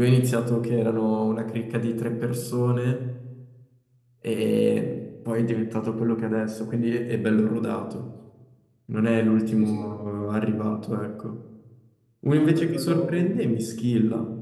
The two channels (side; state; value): both; identical; correlation 1.00